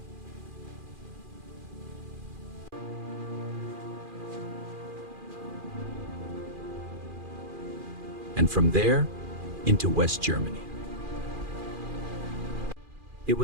And from there, into West Germany. It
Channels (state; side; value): late; left; 2.4 ms